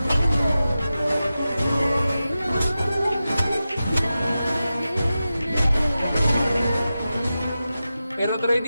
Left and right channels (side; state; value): both; inverted; correlation -0.93